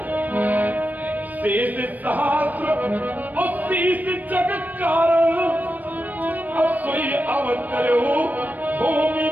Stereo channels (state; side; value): late; left; 0.083 ms